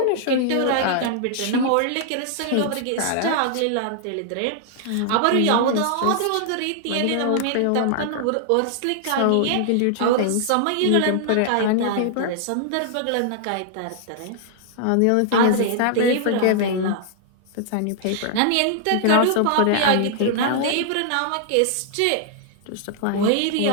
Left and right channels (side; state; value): both; different; correlation -0.01